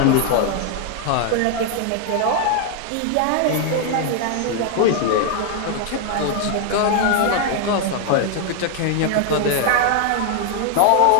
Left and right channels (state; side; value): different; both; correlation 0.00